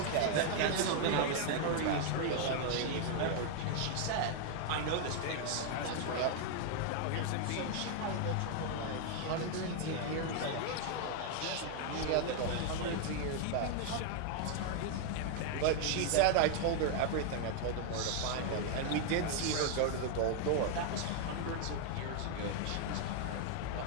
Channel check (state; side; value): different; both; correlation 0.00